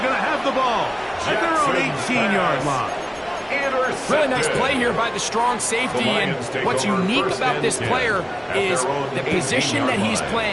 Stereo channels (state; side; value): identical; both; correlation 1.00